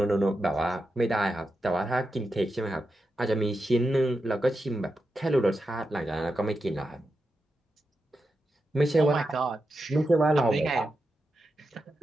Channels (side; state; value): both; normal; correlation 0.88